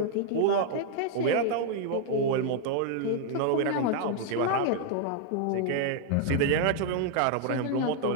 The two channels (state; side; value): different; both; correlation 0.00